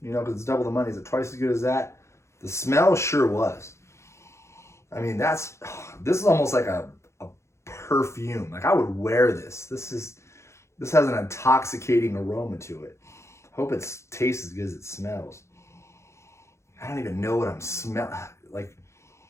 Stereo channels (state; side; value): late; right; 0.13 ms